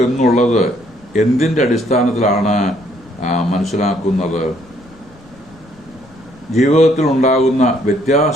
എന്നുള്ളത് എന്തിൻ്റെ അടിസ്ഥാനത്തിലാണ് മനസ്സിലാക്കുന്നത്? ജീവിതത്തിൽ ഉണ്ടാകുന്ന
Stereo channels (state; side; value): noise; left; rumble, 26 dB below the sound